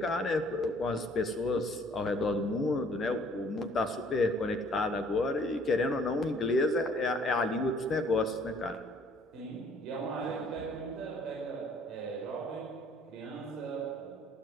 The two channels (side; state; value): both; normal; correlation 0.58